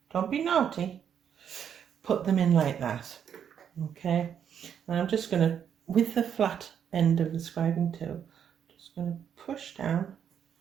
don't be naughty. Put them in like that, okay? And I'm just going to, with the flat end of the scribing tool, just going to push down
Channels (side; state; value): left; quieter; 8.4 dB